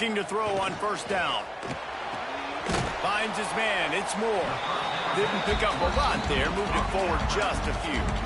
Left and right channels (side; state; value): both; identical; correlation 1.00